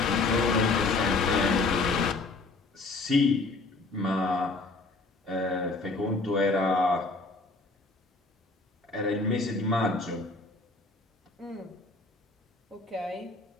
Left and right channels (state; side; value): quieter; right; 3.5 dB